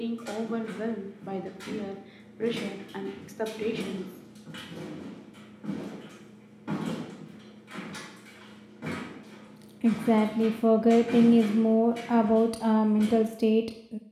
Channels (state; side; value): identical; both; correlation 1.00